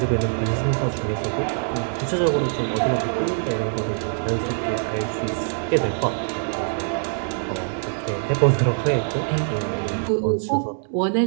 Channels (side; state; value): left; silent; digital silence